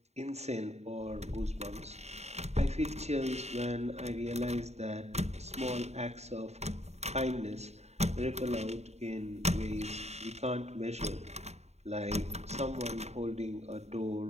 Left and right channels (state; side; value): late; left; 0.32 ms